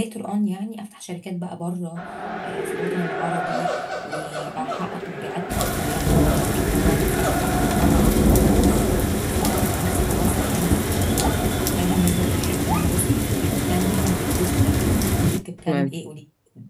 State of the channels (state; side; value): identical; both; correlation 1.00